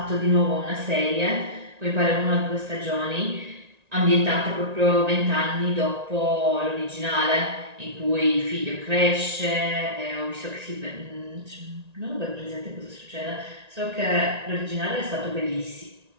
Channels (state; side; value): late; left; 1.9 ms